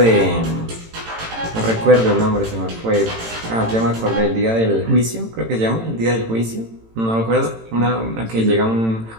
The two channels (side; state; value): left; late; 18 ms